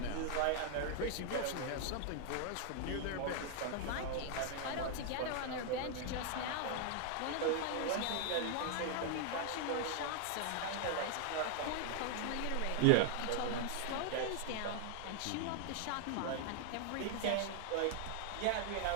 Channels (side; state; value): both; different; correlation 0.00